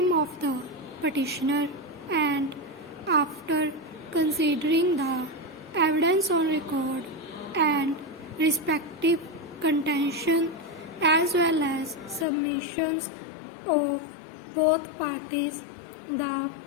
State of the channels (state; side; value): drops out; right; at 12.2 s